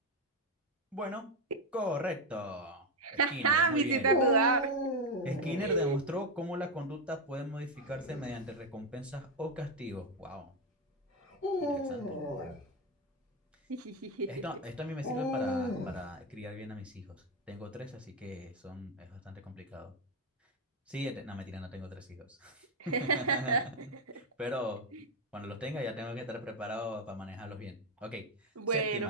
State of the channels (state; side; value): normal; both; correlation 0.07